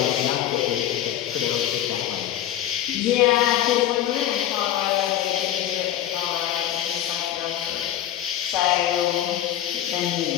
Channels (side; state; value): right; quieter; 11.9 dB